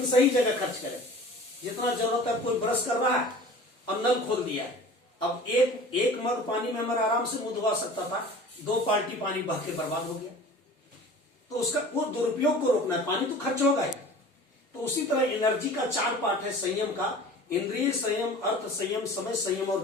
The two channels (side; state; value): both; normal; correlation 0.42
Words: सही जगह खर्च करें। जितना जरूरत है, कोई ब्रश कर रहा है और नल खोल दिया है, अब एक मग पानी में हमारा आराम से मुंह धुआ सकता था, 2 बाल्टी पानी बह के बर्बाद हो गया। तो उसका वो दुरुपयोग को रोकना है, पानी तो खर्च होगा ही। तो उसी तरह एनर्जी का 4 पार्ट है संयम का, इंद्रिय संयम, अर्थ संयम, समय संयम और